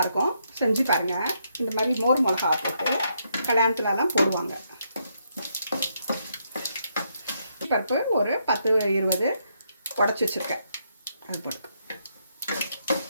செஞ்சு பாருங்கள். இந்த மாதிரி மோர் மிளகா போட்டு கல்யாணத்துலலாம் போடுவாங்க. பருப்பு ஒரு 10-20 உடச்சி வச்சுருக்கேன், அது போட்டு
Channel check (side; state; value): both; inverted; correlation -0.76